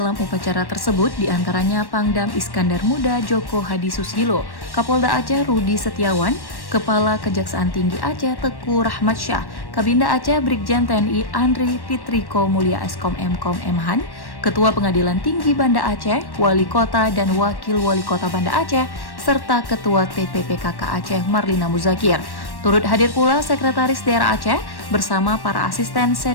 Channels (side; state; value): right; late; 1.1 ms